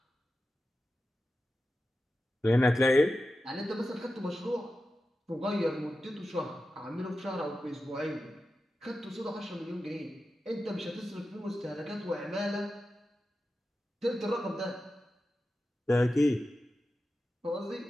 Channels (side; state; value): both; normal; correlation 0.92